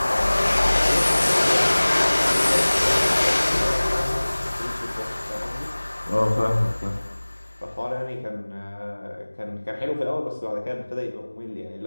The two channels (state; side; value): inverted; both; correlation -1.00